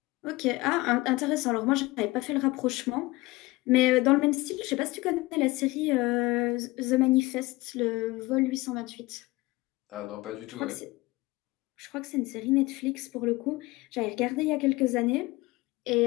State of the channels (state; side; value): quieter; right; 21.1 dB